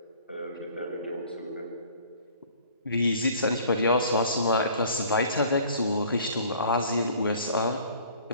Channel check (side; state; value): both; inverted; correlation -0.51